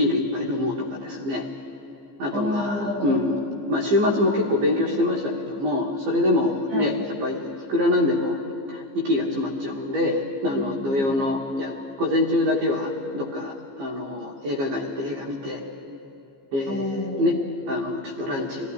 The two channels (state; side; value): late; left; 15 ms